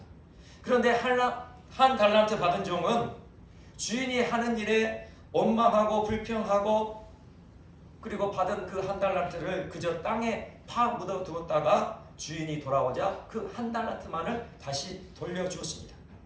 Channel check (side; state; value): both; identical; correlation 1.00